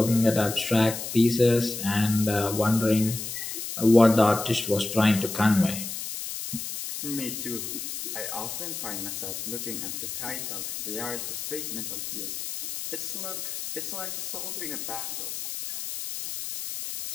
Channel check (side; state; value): left; noise; hiss, 6 dB below the sound